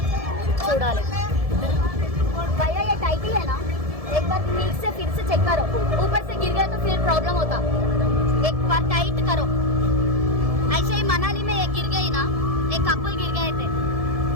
చూడాలి. भैया ये टाइट ही है ना, एक बार ठीक से फिर से चेक करो. ऊपर से गिर गया तो फिर प्रॉब्लम होता. एक बार टाइट करो. ऐसे ही मनाली में एक गिर गई ना, एक कपल गिर गए थे,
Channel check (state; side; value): late; left; 1.7 ms